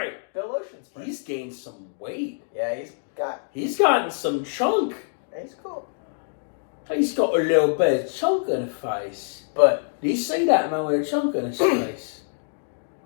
Bill Oceanfrey. He's gained some weight. Yeah, He's gotten some chunk. he's cool. He's got a little bit of chunk in his face. But Do you see that man with a chunk in his face?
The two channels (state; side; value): silent; right; digital silence